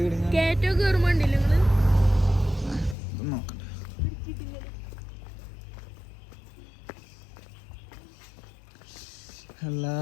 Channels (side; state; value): right; drops out; at 3.0 s